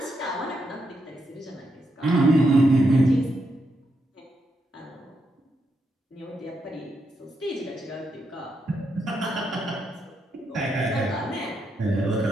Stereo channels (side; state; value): both; normal; correlation 0.82